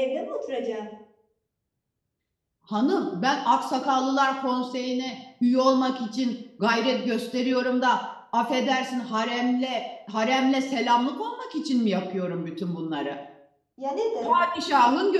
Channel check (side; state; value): both; identical; correlation 1.00